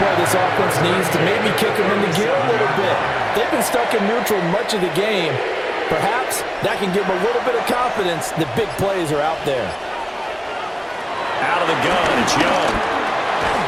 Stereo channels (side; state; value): both; identical; correlation 1.00